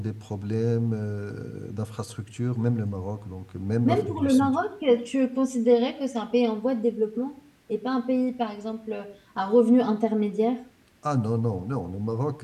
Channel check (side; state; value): both; identical; correlation 1.00